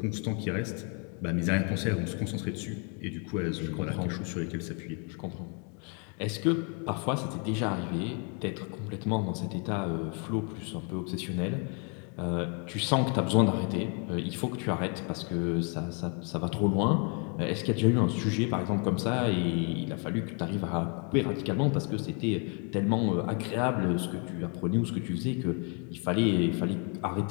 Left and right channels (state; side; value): quieter; right; 37.6 dB